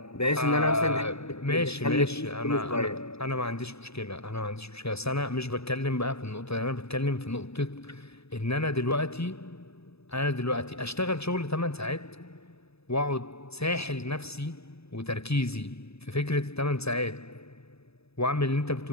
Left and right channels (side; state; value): right; late; 0.78 ms